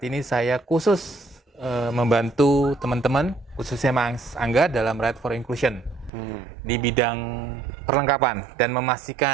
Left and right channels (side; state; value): left; drops out; at 6.1 s